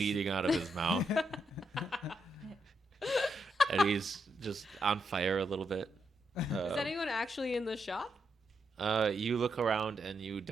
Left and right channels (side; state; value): both; normal; correlation 0.81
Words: out of his mouth. And he's just on fire a little bit. Is anyone actually in the shop? You look around and you